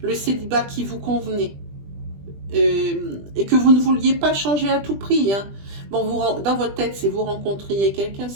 célibat qui vous convenait. et que vous ne vouliez pas changer à tout prix. Hein. Bon, dans votre tête, si vous rencontriez quelqu'un,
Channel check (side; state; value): left; late; 20 ms